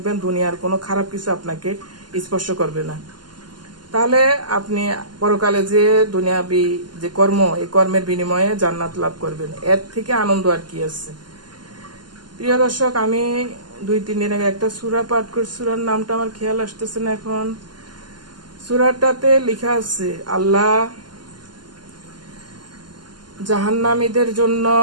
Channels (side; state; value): left; late; 0.71 ms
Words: দুনিয়ার কোনো খারাপ কিছু আপনাকে স্পর্শ করবে না। তাহলে আপনি পরকালে যে দুনিয়াবি যে কর্ম, এই কর্মের বিনিময়ে জান্নাত লাভ করবেন। এর থেকে আনন্দ আর কি আছে। প্রিয় দর্শক, আমি 2-3 দিন আগে একটা সূরা পাঠ করছি, সূরার নামটা আমার খেয়াল আসতেছে না এখন। সূরাটাতে লেখা আছে আল্লাহ জাহান্নামীদের জন্য